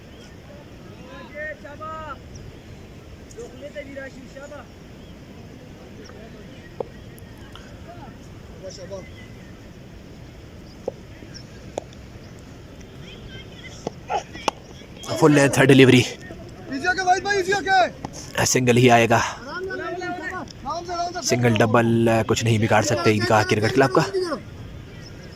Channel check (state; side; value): identical; both; correlation 1.00